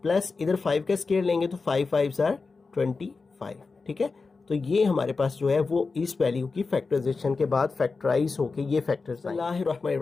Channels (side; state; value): right; quieter; 4.3 dB